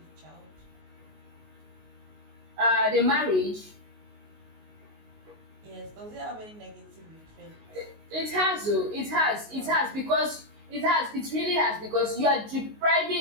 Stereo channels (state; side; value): late; left; 19 ms